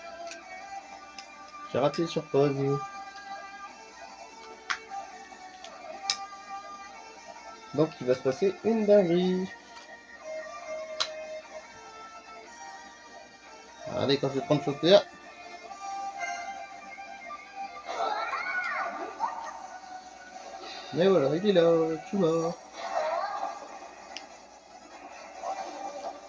j'ai raté sur pause. Donc, il va se passer une dinguerie. Regardez quand je vais prendre chauffeur. Mais voilà, il est là, tout mort.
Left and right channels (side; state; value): both; identical; correlation 1.00